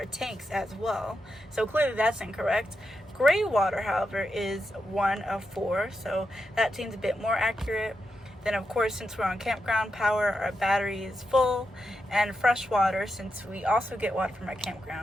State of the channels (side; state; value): both; normal; correlation 0.86